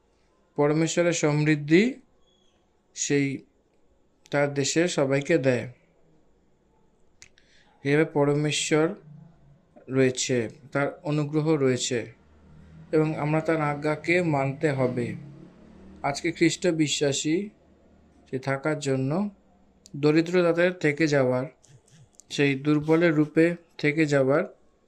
পরমেশ্বরের সমৃদ্ধি সেই তার দেশের সবাইকে দেয়। এভাবে পরমেশ্বর রয়েছে, তার অনুগ্রহ রয়েছে এবং আমরা তার আজ্ঞাকে মানতে হবে। আজকে খ্রিস্ট বিশ্বাসী সে থাকার জন্য দরিদ্র তাদের থেকে যাওয়ার, সেই দুর্বলের রূপে থেকে যাওয়ার,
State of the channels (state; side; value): identical; both; correlation 1.00